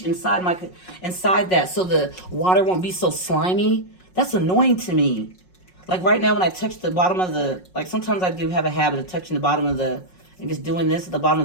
inside that so the water won't be so slimy. That's annoying to me. Like right now when I touch the bottom of the, like sometimes I do have a habit of touching the bottom of the, and just doing this at the bottom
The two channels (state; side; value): late; right; 5.5 ms